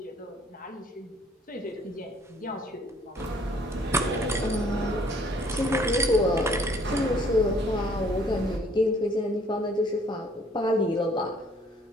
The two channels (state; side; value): normal; both; correlation 0.60